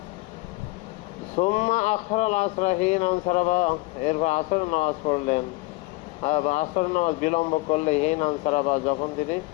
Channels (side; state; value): right; quieter; 22.8 dB